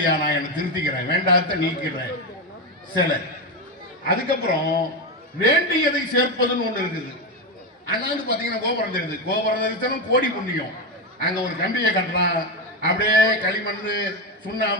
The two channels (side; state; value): both; normal; correlation 0.12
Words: நான் என்ன திருத்திக்கிறேன், வேண்டாத நீக்கிறேன் சிலை. அதுக்கப்புறம் வேண்டியதை சேர்ப்பதுன்னு ஒண்ணு இருக்குது. அண்ணாந்து பாத்தீங்கன்னா கோபுரம் தெரியுது. கோபுரம் தெரிஞ்சாலும் கோடி புண்ணியம். அங்க ஒரு கம்பியை கட்டுறான், அப்படியே களிமண்,